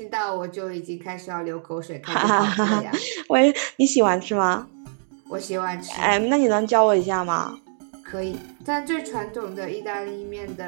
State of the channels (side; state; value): left; silent; digital silence